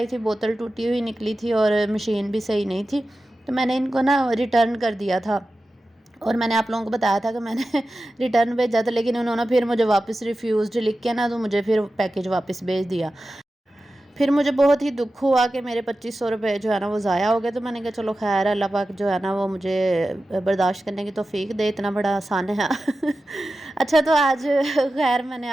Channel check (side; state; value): both; normal; correlation 0.93